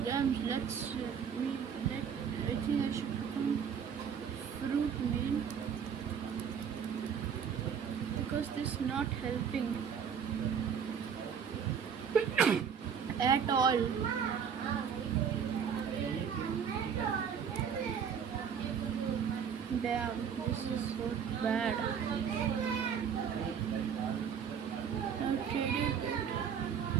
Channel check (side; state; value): left; quieter; 7.4 dB